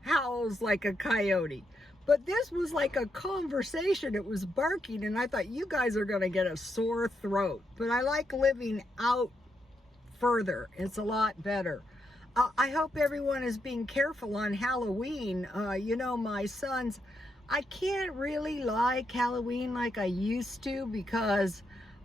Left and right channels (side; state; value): both; normal; correlation 0.81